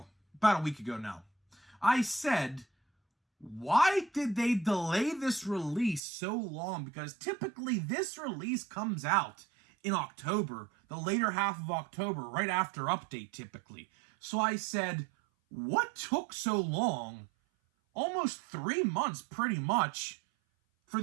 about a week ago now. I said, why did they delay this release so long? Because typically this release comes out in October, the later half of October, right after update typically. So I said, what took so long, almost 3 months pretty much, for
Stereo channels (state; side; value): drops out; left; at 6.0 s